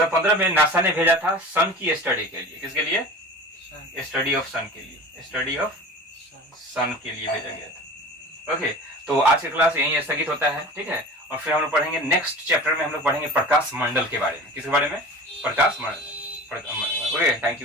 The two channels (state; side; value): normal; both; correlation 0.37